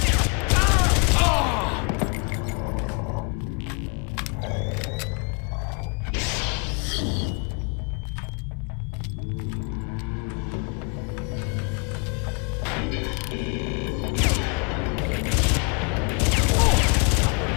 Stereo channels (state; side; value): quieter; right; 35.5 dB